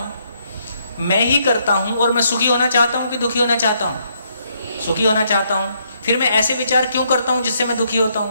मैं ही करता हूं। और मैं सुखी होना चाहता हूं कि दुखी होना चाहता हूं? सुखी होना चाहता हूं। फिर मैं ऐसे विचार क्यों करता हूं जिससे मैं दुखी होता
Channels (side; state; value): both; inverted; correlation -0.73